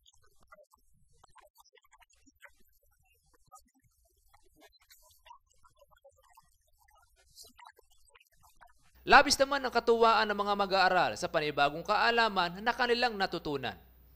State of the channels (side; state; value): both; identical; correlation 1.00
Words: Labis naman ang katuwaan ng mga mag-aaral sa panibagong kaalaman na kanilang natutunan.